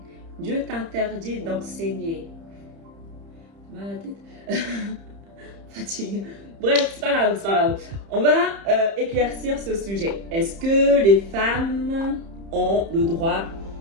Dieu t'interdit d'enseigner. » Mal à la tête. Fatigue. Bref, c'est pas grave, c'est pas grave. On va éclaircir ce sujet. Est-ce que les femmes ont le droit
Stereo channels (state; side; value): late; left; 30 ms